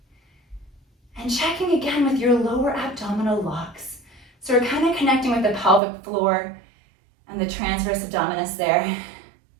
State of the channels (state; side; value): drops out; left; at 5.8 s